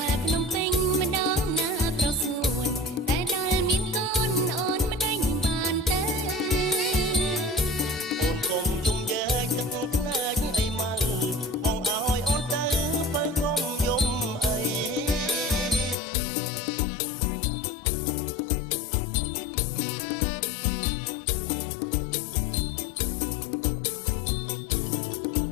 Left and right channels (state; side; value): drops out; right; at 16.0 s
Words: ល់ភ្នំពេញម្ដងណាប្រសួនតែដល់មានកូនអូនមិនដេញបានទេ អូនកុំជុំយើកទឹកភ្នែកអីមើលបងឲ្យអូនទៅបើកុំយំអី ឲ្យម៉ៃទៅមែនរីកទេលោកប្ដីទៅមែនរីកទេលោកប្ដី អូនស្លៀកម៉ូដថ្មីទៅ